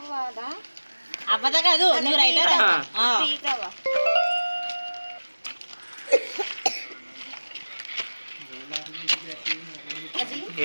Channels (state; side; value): inverted; both; correlation -1.00